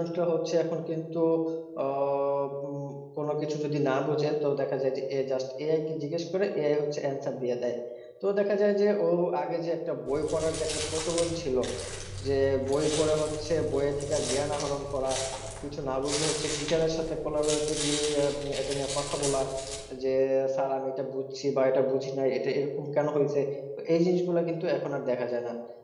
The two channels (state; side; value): identical; both; correlation 1.00